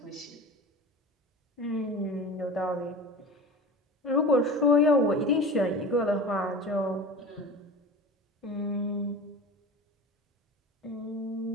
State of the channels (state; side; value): normal; both; correlation 0.33